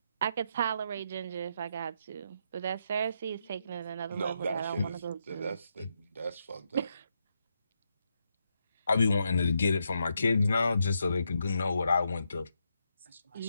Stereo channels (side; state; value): both; inverted; correlation -0.80